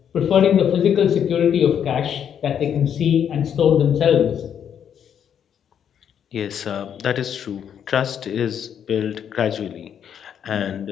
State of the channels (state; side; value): quieter; right; 8.6 dB